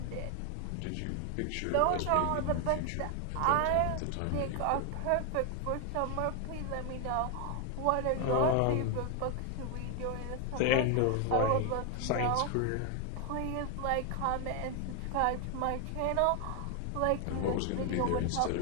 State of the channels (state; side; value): different; both; correlation 0.01